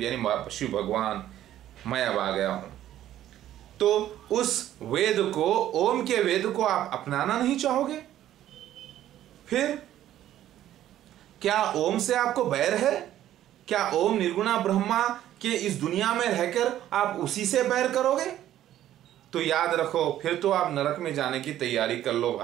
यानी शिव भगवान, मैं अब आ गया हूं। तो उस वेद को, ओम के वेद को आप अपनाना नहीं चाहोगे? फिर क्या ओम से आपको बैर है? क्या ओम निर्गुणा ब्रह्मा के इस दुनिया में रहकर आप उसी से बैर करोगे? तो याद रखो फिर तो आप नरक में जाने की तैयारी कर लो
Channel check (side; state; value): left; quieter; 12.4 dB